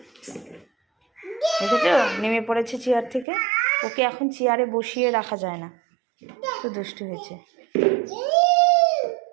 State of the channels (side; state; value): left; drops out; at 3.2 s